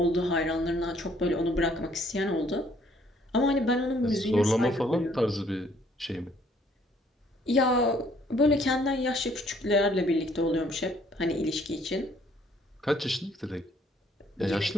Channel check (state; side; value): normal; both; correlation 0.63